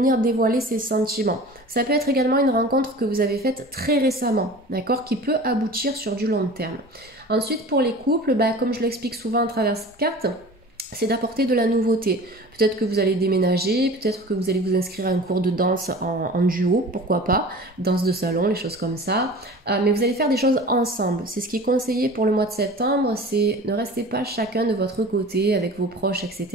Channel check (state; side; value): normal; both; correlation 0.40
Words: dévoiler ses sentiments. Ça peut être également une rencontre que vous avez faite très récemment, d'accord, qui peut aboutir sur du long terme. Ensuite, pour les couples, comme je l'explique souvent à travers cette carte, c'est d'apporter de la nouveauté. Peut-être que vous allez déménager, peut-être que vous allez vous inscrire à un cours de danse en duo, pourquoi pas, danse de salon, les choses comme ça. Mais vous allez faire des choses ensemble. C'est ce qui est conseillé pour le mois de septembre, c'est ne restez pas chacun de votre côté avec vos proches,